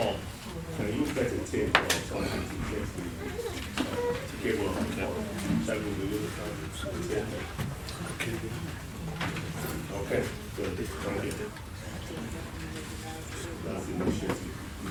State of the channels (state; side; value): identical; both; correlation 1.00